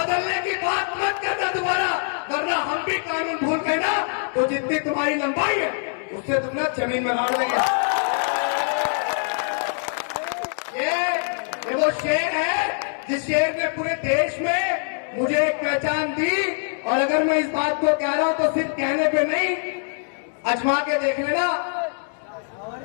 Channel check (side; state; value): right; silent; digital silence